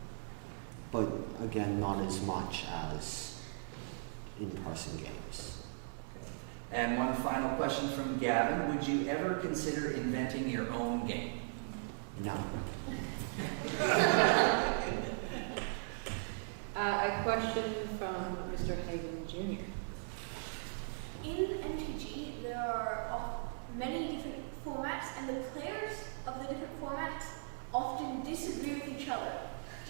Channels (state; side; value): silent; left; digital silence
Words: but again, not as much as in-person games. And one final question from Gavin. Would you ever consider inventing your own game? No. A question from Mr. Hagen Jr. In MTG, there are many different formats, and the players of the different formats often disagree with each other.